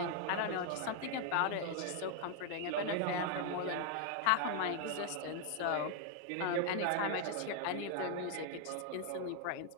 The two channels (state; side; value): different; both; correlation 0.00